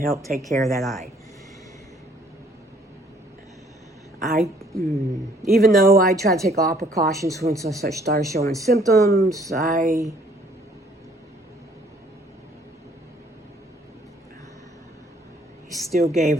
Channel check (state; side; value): normal; both; correlation 0.61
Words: take care of that eye. Even though I tried to take all precautions once I started showing symptoms, I still gave